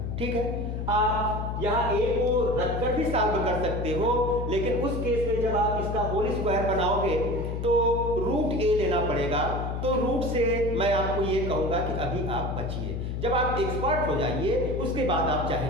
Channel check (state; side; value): noise; left; hum, 3 dB below the sound